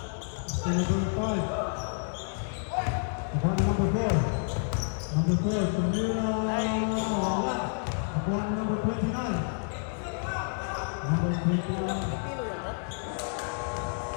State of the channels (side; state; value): right; silent; digital silence